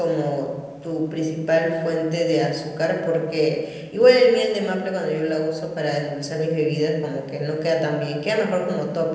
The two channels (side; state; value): both; identical; correlation 1.00